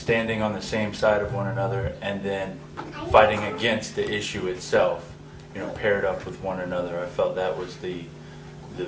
on the same side of one another and then fighting against the issue itself, paired up with one another. I felt that was the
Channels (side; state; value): both; identical; correlation 1.00